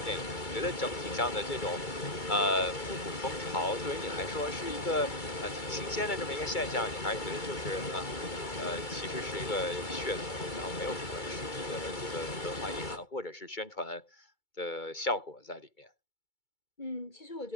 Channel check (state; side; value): late; right; 2.3 ms